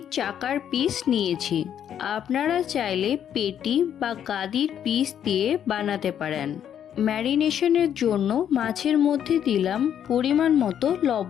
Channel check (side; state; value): right; quieter; 9.4 dB